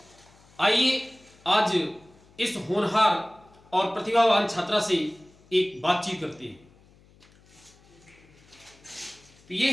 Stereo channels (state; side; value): noise; left; hum, 28 dB below the sound